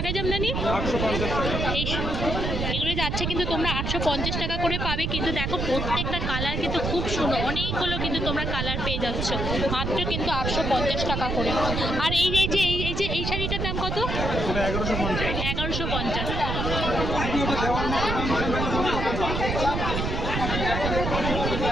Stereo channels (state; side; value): noise; right; rumble, 1 dB below the sound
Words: জামদানি? এগুলো যাচ্ছে কিন্তু তোমরা 850 টাকা করে পাবে। কিন্তু দেখো প্রত্যেকটা কালার কিন্তু খুব সুন্দর, অনেকগুলো কিন্তু তোমরা কালার পেয়ে যাচ্ছ মাত্র কিন্তু 850 টাকা করে। আর এই শাড়িটার দাম কত? 1150।